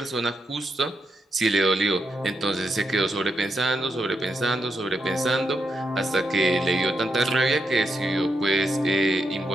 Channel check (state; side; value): normal; both; correlation 0.83